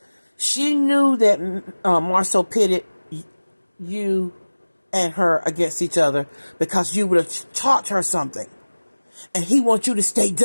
She knew that Marceau pitted you and her against each other because you would have taught her something. And he wants you to stay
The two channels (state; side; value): inverted; both; correlation -1.00